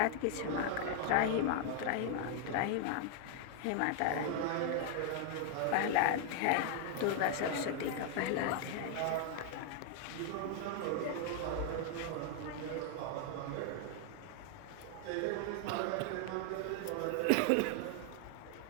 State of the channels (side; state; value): both; different; correlation 0.00